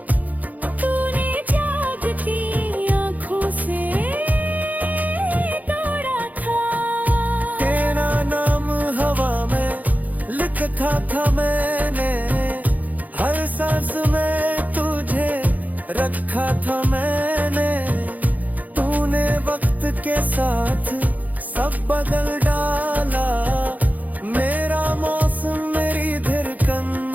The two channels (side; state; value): left; late; 0.079 ms